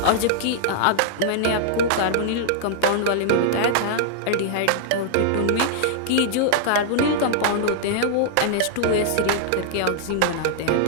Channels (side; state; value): both; different; correlation -0.01